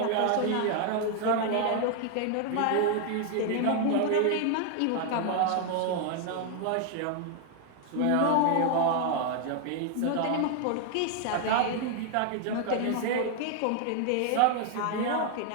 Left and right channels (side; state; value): both; different; correlation 0.00